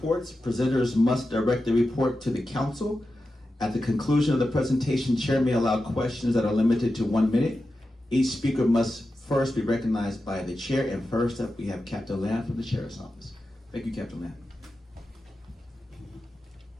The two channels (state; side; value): normal; both; correlation 0.91